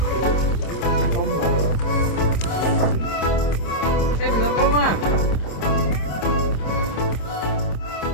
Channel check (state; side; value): late; right; 26 ms